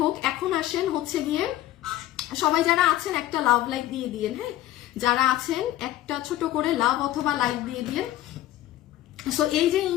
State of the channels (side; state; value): right; quieter; 14.2 dB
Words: এখন আসেন হচ্ছে গিয়ে সবাই যারা আছেন একটা লাভ লাইক দিয়ে দিয়েন। হ্যাঁ, যারা আছেন একটা ছোট করে লাভ অথবা লাইক দিয়ে দিয়েন। সো এই যে